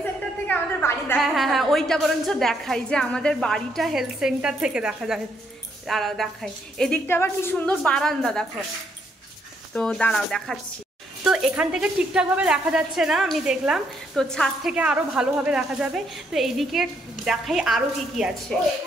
সেন্টার থেকে আমাদের বাড়ি দেখা যায়। হ্যাঁ, ওইটা বরঞ্চ দেখাই যে আমাদের বাড়িটা হেলথ সেন্টার থেকে দেখা যায়। দাঁড়াও দেখাই, এদিকটা আবার কি সুন্দর বারান্দা দেখো, তো দাঁড়াও দেখাচ্ছি। তো এখান থেকে ঠিকঠাকভাবে দেখা যাচ্ছে না, আমি দেখলাম, তো ছাদ থেকে আরো ভালোভাবে দেখা যাবে। তো এইদিকে দেখাই আরো কি কি আছে।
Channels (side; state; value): both; normal; correlation 0.73